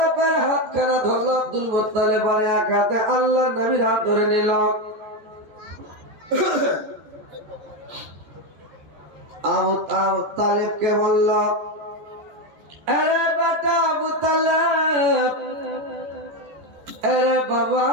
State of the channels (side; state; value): left; late; 14 ms